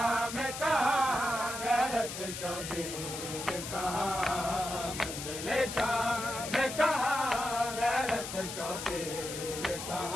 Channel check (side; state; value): left; noise; hiss, 7 dB below the sound